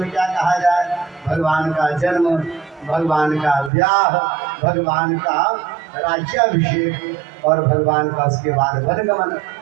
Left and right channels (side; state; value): left; drops out; at 3.7 s